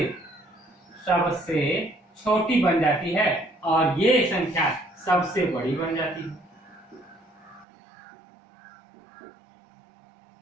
छोटी बन जाती है और ये संख्या सबसे बड़ी बन जाती है।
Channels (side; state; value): left; drops out; at 7.7 s